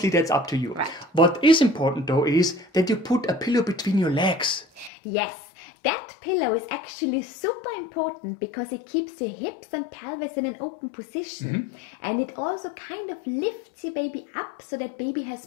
that's up to you. Right. What is important though is that you put a pillow between your legs. Yes, that pillow is actually super important because it keeps your hips and pelvis in an open position. And it also kind of lifts your baby up so that baby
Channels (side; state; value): right; drops out; at 4.9 s